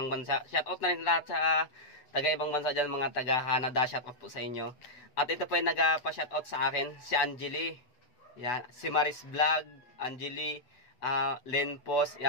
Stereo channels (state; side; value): late; right; 8.0 ms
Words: bansa. Shoutout na rin lahat sa taga-ibang bansa dyan, mga taga-Canada. Shoutout po sa inyo. At ito po yung nagpa-shoutout sa akin, si Angeli. Yan, si Maris Vlog, Angeli, Len Post.